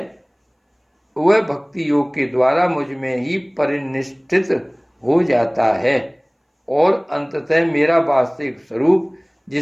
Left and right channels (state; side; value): identical; both; correlation 1.00